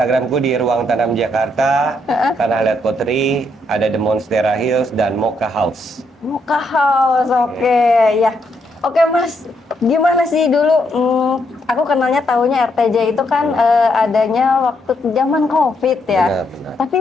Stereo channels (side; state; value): both; normal; correlation 0.76